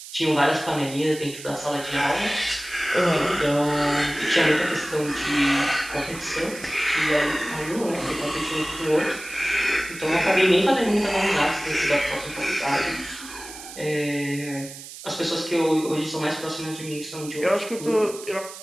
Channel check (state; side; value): noise; right; hiss, 14 dB below the sound